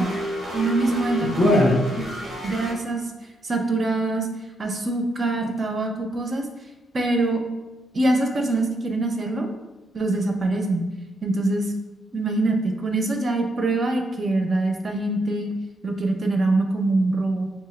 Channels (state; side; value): normal; both; correlation 0.78